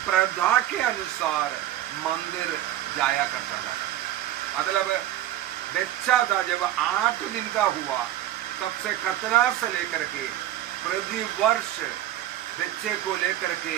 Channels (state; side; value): quieter; left; 13.0 dB